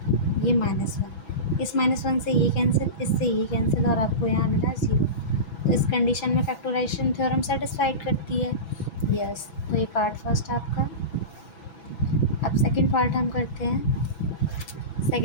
ये -1, इस -1 से ये कैंसिल, इससे ये कैंसिल, और आपको यहाँ मिला 0। तो इस कंडीशन में फैक्टराइजेशन थ्योरम सेटिस्फाइड करती है। यस, तो ये पार्ट फर्स्ट आपका। अब सेकंड पार्ट हम करते हैं।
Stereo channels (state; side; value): late; right; 6.1 ms